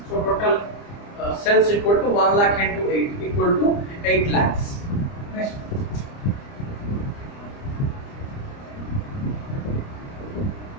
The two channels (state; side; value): late; right; 29 ms